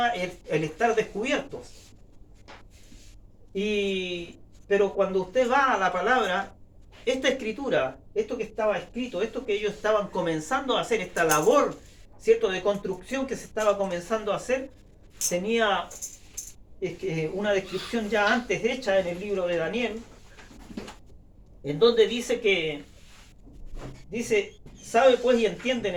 el estar descubiertos. Pero cuando usted va a la palabra, esta escritura, esto que estaba escrito, esto que ellos estaban comenzando a hacer, esta labor, ¿cierto?, de construcción que se estaba comenzando a hacer, tenía una descripción ya antes hecha en el libro de Daniel, en donde dice, sabe pues y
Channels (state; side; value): identical; both; correlation 1.00